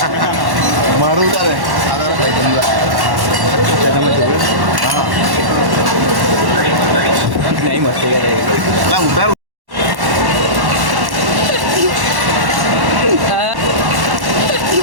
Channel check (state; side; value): late; left; 1.1 ms